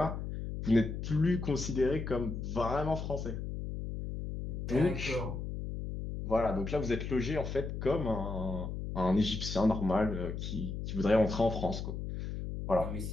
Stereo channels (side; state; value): left; noise; hum, 5 dB below the sound